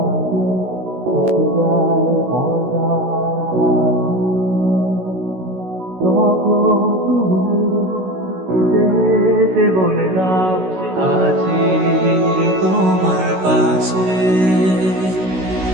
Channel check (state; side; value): late; left; 16 ms